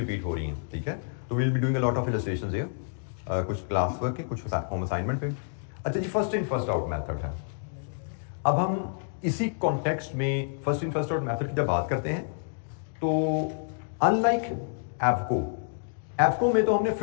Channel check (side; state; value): right; silent; digital silence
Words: हो रही हैं। ठीक है, तो will be doing a lot of illustrations here, कुछ क्लास वर्क के, कुछ होम असाइनमेंट पे। अच्छा जी, first in first out method है। अब हम इसी कॉन्टेक्स्ट में first in first out method की जब बात करते हैं, तो अनलाइक एफको में तो हमने